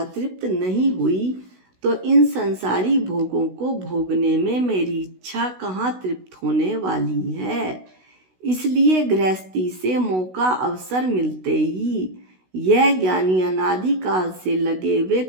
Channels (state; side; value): late; left; 16 ms